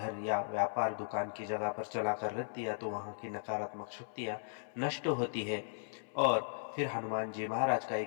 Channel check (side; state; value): right; silent; 53 dB below the other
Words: या व्यापार दुकान की जगह पर चलाकर रख दिया तो वहाँ की नकारात्मक शक्तियाँ नष्ट होती है और फिर हनुमान जी महाराज का